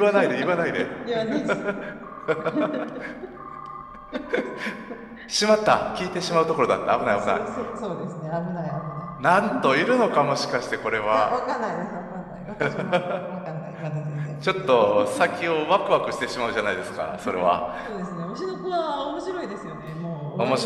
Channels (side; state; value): both; identical; correlation 1.00